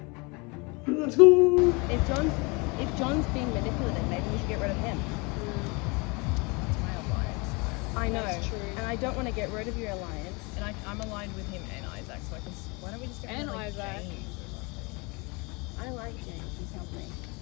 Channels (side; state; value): right; quieter; 28.7 dB